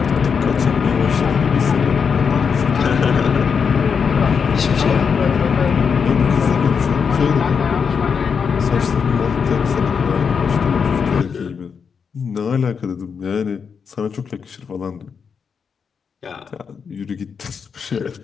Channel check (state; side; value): quieter; right; 6.2 dB